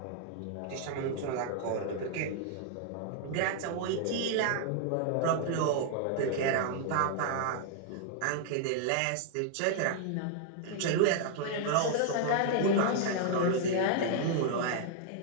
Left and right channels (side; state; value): both; different; correlation -0.01